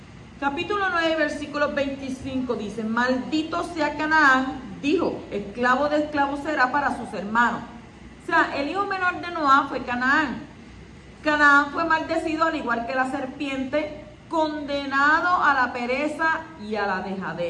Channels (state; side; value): identical; both; correlation 1.00